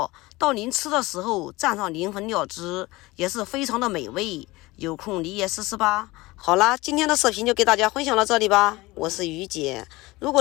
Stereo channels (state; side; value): quieter; right; 20.8 dB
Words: 到您吃的时候蘸上灵魂料汁，也是非常的美味。有空你也试试吧。好啦，今天的视频就给大家分享到这里吧。我是于姐，如